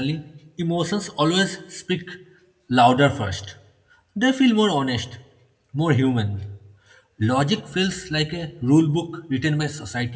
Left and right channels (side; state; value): both; identical; correlation 1.00